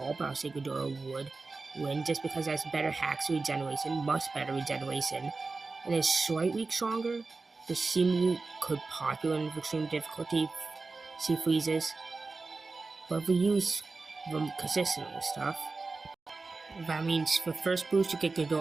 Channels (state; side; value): quieter; left; 3.8 dB